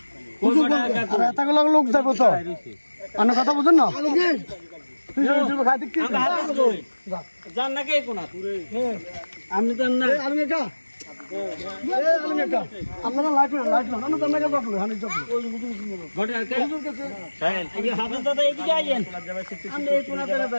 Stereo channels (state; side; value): inverted; both; correlation -1.00